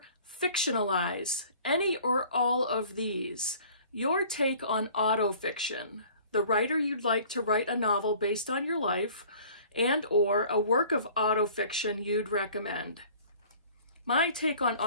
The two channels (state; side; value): inverted; both; correlation -0.50